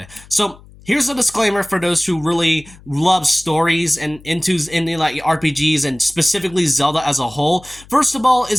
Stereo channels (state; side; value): noise; left; hum, 23 dB below the sound